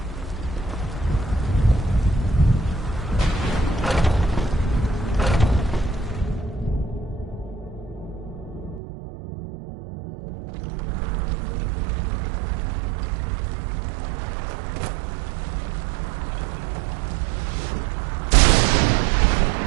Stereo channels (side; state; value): left; drops out; at 8.8 s